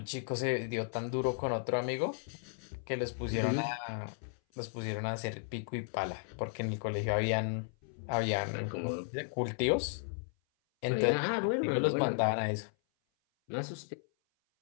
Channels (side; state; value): right; silent; 55 dB below the other